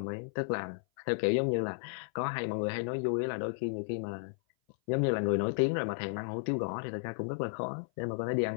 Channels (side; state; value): right; silent; 56 dB below the other